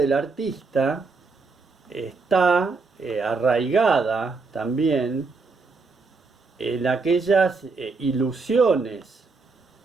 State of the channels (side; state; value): left; quieter; 4.2 dB